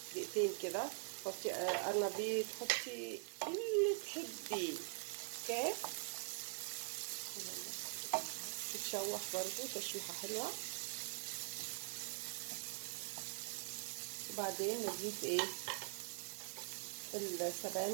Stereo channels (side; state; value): left; silent; digital silence